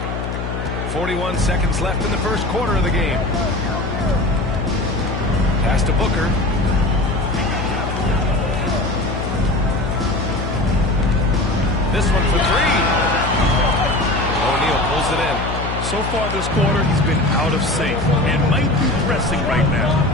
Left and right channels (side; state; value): left; noise; hum, 5 dB below the sound